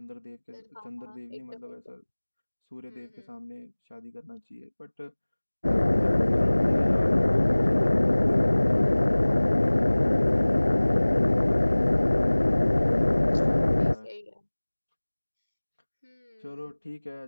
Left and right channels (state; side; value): inverted; both; correlation -1.00